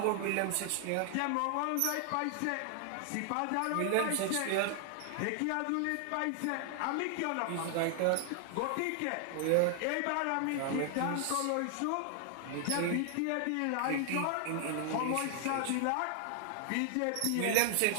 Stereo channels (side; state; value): both; different; correlation 0.00